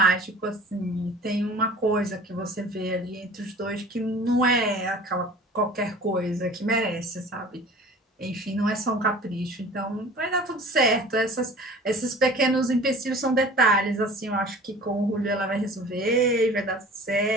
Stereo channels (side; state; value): both; normal; correlation 0.44